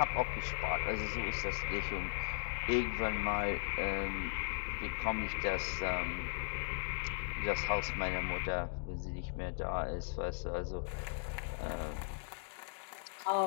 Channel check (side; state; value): right; silent; digital silence